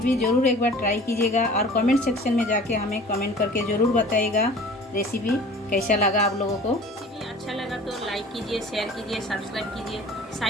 ज़रूर एक बार ट्राई कीजिएगा और कमेंट सेक्शन में जाके हमें कमेंट करके ज़रूर बताइएगा रेसिपी कैसा लगा आप लोगों को। रेसिपी अच्छा लगा तो लाइक कीजिए, शेयर कीजिए, सब्सक्राइब कीजिए।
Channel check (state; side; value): normal; both; correlation 0.44